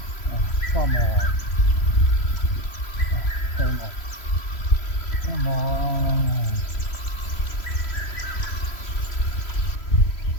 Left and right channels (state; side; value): late; right; 3.1 ms